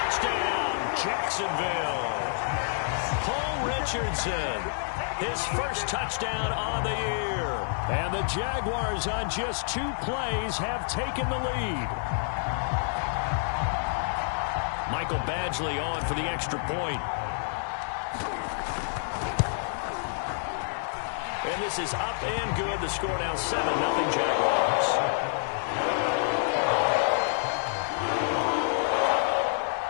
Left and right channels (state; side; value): silent; right; digital silence